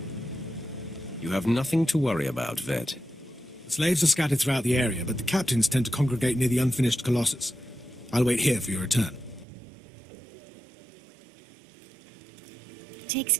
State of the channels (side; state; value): left; drops out; at 9.5 s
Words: You have nothing to worry about, Vet. The slaves are scattered throughout the area, but the captains tend to congregate near the unfinished Colossus. I'll wait here for your return. Takes